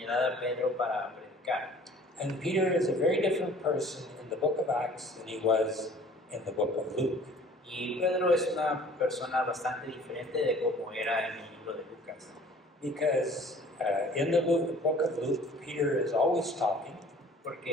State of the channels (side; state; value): both; normal; correlation 0.50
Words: a Pedro para predicar. And Peter is a very different person in the book of Acts than he was in the book of Luke. Y Pedro es una persona bastante diferente de cómo era en el libro de Lucas. Because in the book of Luke, Peter is always talking,